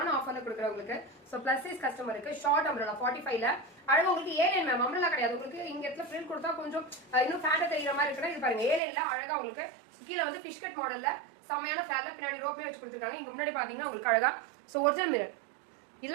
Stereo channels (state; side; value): drops out; left; at 8.8 s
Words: ஆஃபர்ல கொடுக்குறேன் உங்களுக்கு. சோ பிளஸ் சைஸ் கஸ்டமருக்கு ஷார்ட் அம்ரலா 45ல அழகா உங்களுக்கு ஏலைன் மேம். அம்ரலா கிடையாது உங்களுக்கு. இங்க இடத்துல பிரிண்ட் கொடுத்தா கொஞ்சம் இன்னும் ஃபேண்டா தெரியுற மாதிரி இருக்குன்னா இது பாருங்க. ஏலைன்ல அழகா உங்களுக்கு கீழே வந்து ஃபிஷ் கட் மாடல்ல செம்மையான ஃபிளாட்ல பின்னாடி ரோப்மே வச்சு கொடுத்துருக்காங்க. இங்க முன்னாடி பாத்தீங்கன்னா உங்களுக்கு அழகா சோ ஒரிஜினல் மிரர்